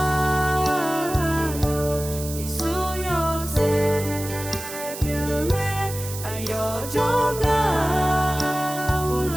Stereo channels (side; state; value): right; noise; hiss, 10 dB below the sound